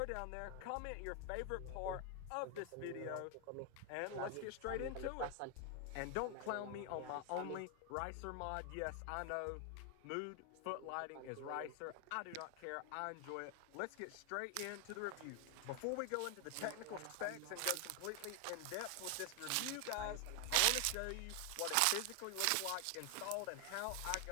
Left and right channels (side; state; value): both; different; correlation 0.00